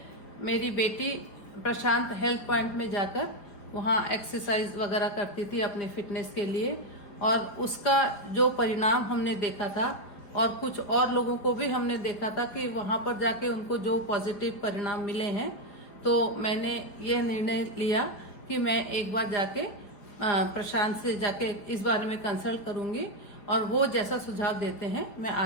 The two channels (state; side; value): late; right; 4.9 ms